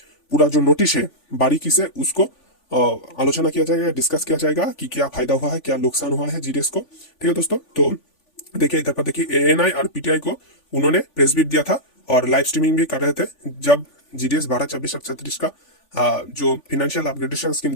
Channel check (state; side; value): late; right; 3.5 ms